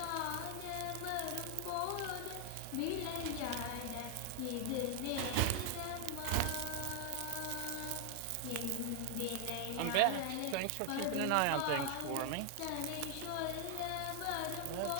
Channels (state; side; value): different; both; correlation 0.00